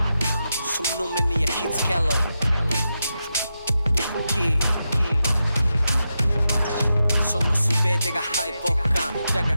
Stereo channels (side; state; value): both; inverted; correlation -0.88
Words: その目に焼き付けろその全てが敗北感だが